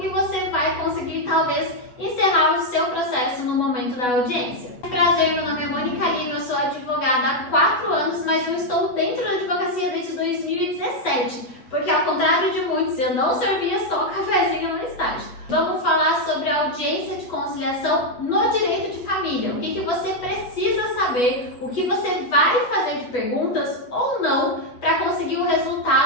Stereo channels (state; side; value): late; right; 8.1 ms